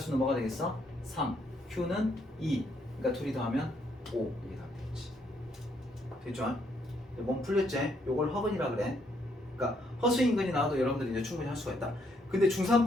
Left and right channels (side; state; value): both; normal; correlation 0.72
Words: 뭐가 되겠어? 3 q는 2 그러니까 둘이 더하면 5 이게 답이 되겠지. 됐죠? 몸 풀렸지? 요걸 허근이라 그래. 그러니까 허수인근이 나와도 여러분들이 이제 충분히 할 수가 있다. 근데